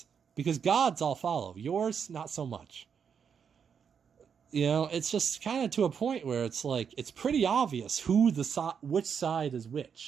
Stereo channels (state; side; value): quieter; left; 7.0 dB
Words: Because God's I'll follow. Yours, not so much. It's just kind of to a point where it's like, it's pretty obvious which side is